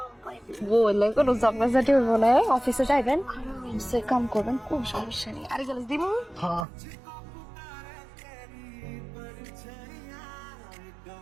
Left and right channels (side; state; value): left; drops out; at 6.7 s